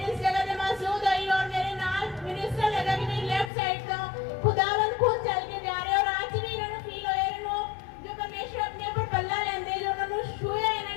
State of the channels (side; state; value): right; drops out; at 3.5 s